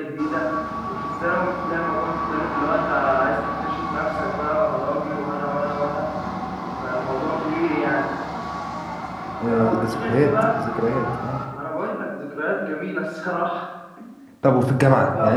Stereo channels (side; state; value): both; identical; correlation 1.00